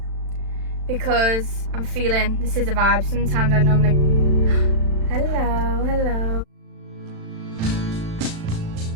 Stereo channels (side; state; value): left; late; 36 ms